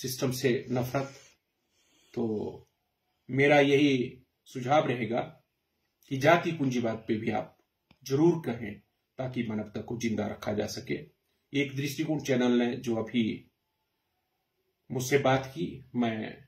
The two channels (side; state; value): both; identical; correlation 1.00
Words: से नफरत। तो मेरा यही सुझाव रहेगा कि जाति पूंजीवाद पे भी आप जरूर कहें, ताकि मानवता को जिंदा रखा जा सके। एक दृष्टिकोण चैनल ने जो अभी मुझसे बात की, मैं